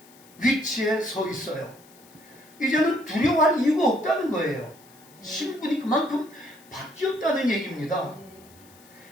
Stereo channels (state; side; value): noise; left; hiss, 25 dB below the sound